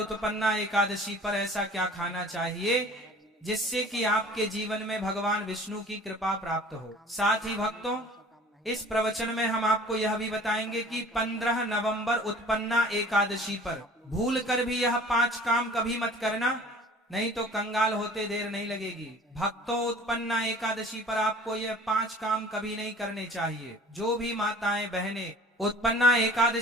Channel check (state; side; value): normal; both; correlation 0.47